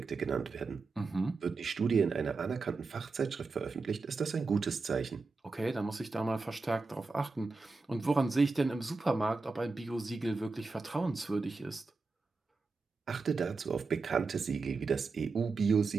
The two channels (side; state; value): left; quieter; 4.0 dB